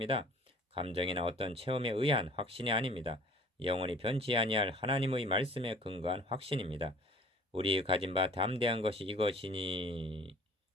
감정이나 어떤 체험에 의한 확신이 아닙니다. 영원히 변치 아니할 하나님의 말씀에 근거한 확신입니다. 우리 가진 바 담대한 것이 이것이니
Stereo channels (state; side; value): normal; both; correlation 0.50